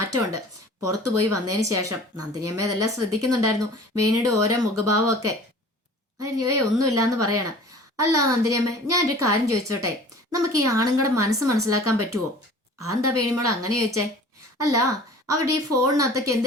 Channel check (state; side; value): normal; both; correlation 0.45